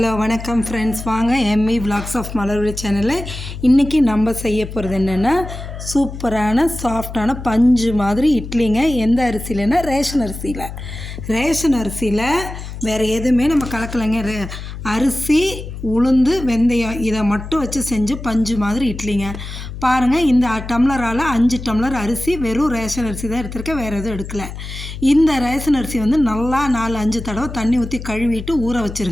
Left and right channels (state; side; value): noise; left; hum, 10 dB below the sound